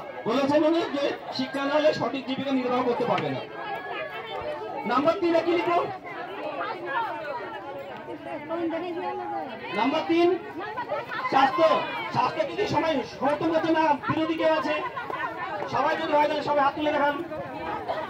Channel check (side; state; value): both; identical; correlation 1.00